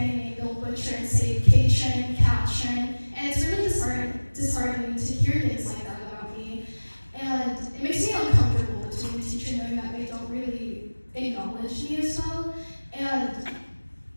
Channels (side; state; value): both; inverted; correlation -1.00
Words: name, they'll butcher and say Katrin, Katrin, and it's really disheartening to hear things like that about me. And it makes me uncomfortable between the teacher knowing that they don't really acknowledge me as well. And